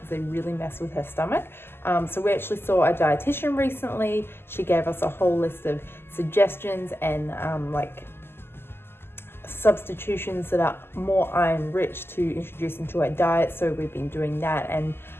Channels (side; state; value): right; late; 0.11 ms